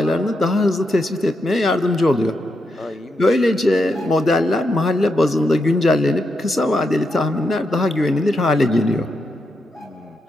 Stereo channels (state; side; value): normal; both; correlation 0.83